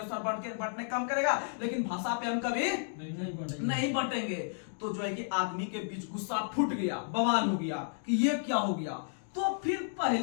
बांटने का काम करेगा, लेकिन भाषा पे हम कभी नहीं बांटेंगे। तो जो है कि आदमी के बीच गुस्सा फूट गया, बवाल हो गया कि ये क्या हो गया। तो फिर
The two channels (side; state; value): right; silent; digital silence